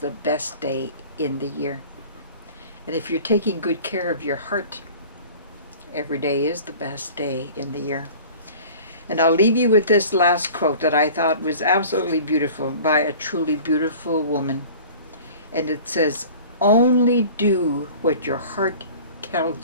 best day in the year. And if you're taking good care of your heart, every day is the best day in the year. And I'll leave you with this last quote that I thought was absolutely beautiful by a truly beautiful woman. And it says, "Only do what your heart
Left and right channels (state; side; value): inverted; both; correlation -0.43